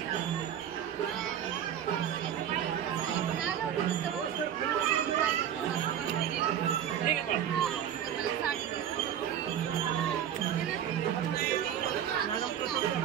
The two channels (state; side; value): quieter; left; 9.7 dB